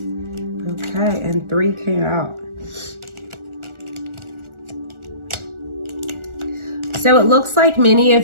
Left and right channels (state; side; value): late; left; 1.4 ms